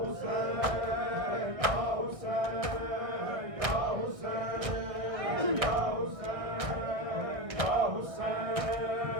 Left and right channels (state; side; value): late; left; 1.6 ms